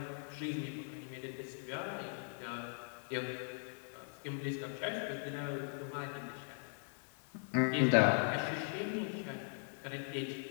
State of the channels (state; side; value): silent; right; 51 dB below the other